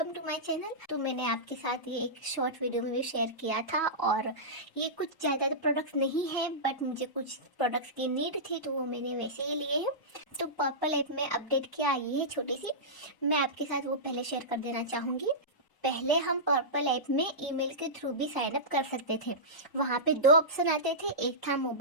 to my channel. तो मैंने आपके साथ ये एक शॉर्ट वीडियो में भी शेयर किया था और ये कुछ ज़्यादा प्रोडक्ट्स नहीं है बट मुझे कुछ प्रोडक्ट्स की नीड थी तो वो मैंने वैसे ही लिए हैं। तो पर्पल ऐप में अपडेट क्या आई है छोटी सी, मैं आपके साथ वो पहले शेयर कर देना चाहूँगी। पहले हम पर्पल ऐप में ईमेल के थ्रू भी साइन अप कर सकते थे। वहाँ पे दो ऑप्शन आते थे, एक था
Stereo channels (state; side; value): late; right; 1.0 ms